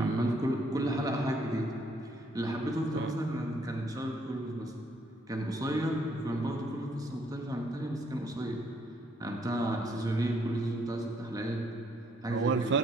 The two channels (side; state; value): both; normal; correlation 0.69